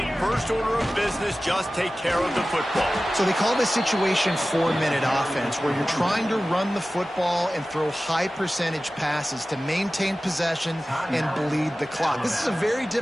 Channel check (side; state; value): both; normal; correlation 0.96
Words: first order of business, just take care of the football. So they call this situation 4-minute offense, where you're trying to run the football and throw high-percentage passes to maintain possession and bleed the clock. This is a very